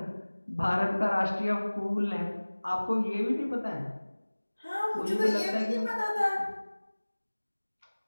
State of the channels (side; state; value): both; inverted; correlation -1.00